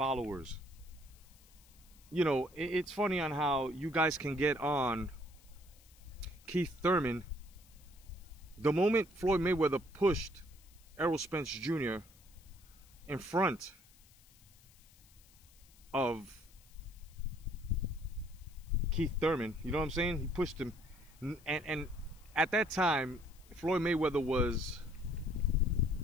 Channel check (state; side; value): noise; left; hiss, 26 dB below the sound